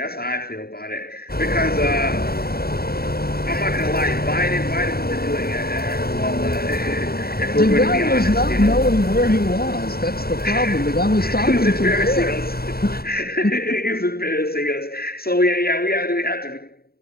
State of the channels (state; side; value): late; right; 0.45 ms